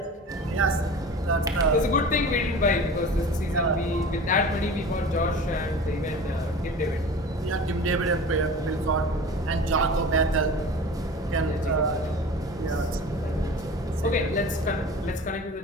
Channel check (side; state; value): both; normal; correlation 0.37